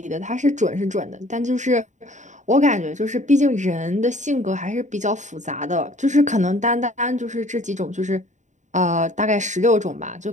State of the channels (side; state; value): left; late; 0.35 ms